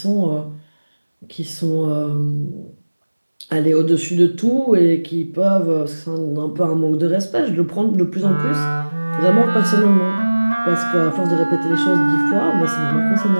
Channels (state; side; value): inverted; both; correlation -1.00